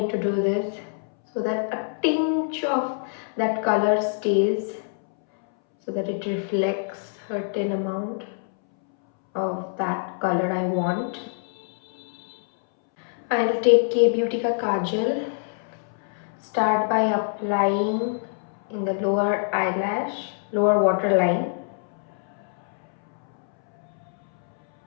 to do this so that a tinge of that color stays, so that it reflects a certain amount of that color I want. I'll take K Beauty ka kajal. Start by applying in the lower waterline.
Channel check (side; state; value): right; silent; 62 dB below the other